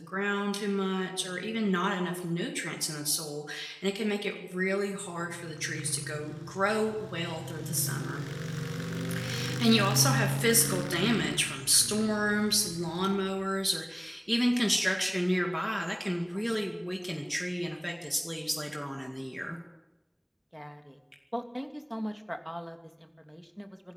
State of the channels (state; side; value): identical; both; correlation 1.00